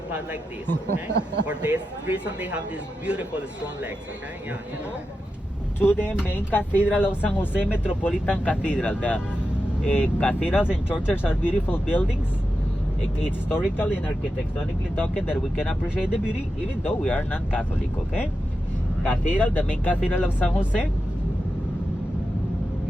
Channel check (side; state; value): both; normal; correlation 0.90